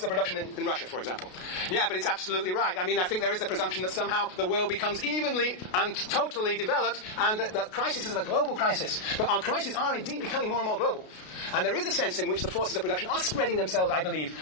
of production in Russia, for example. Yeah, but it's absolutely right. I mean, I think there is the presumption that somehow the world becomes evenly fully and totally developed, and that the crisis is a global crisis. But our crises are indeed becoming more and more global. And there is a sense in which the forces of production are spreading themselves, I believe,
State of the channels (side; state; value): right; late; 33 ms